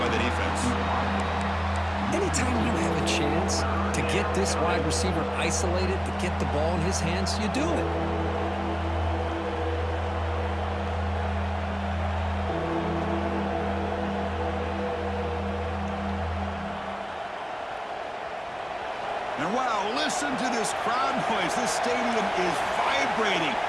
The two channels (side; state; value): both; identical; correlation 1.00